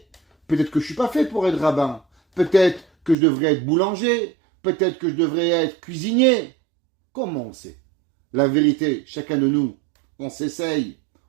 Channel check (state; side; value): drops out; left; at 3.2 s